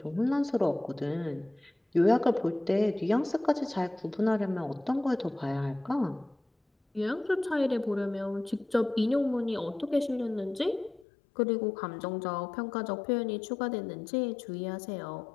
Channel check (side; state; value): right; drops out; at 11.1 s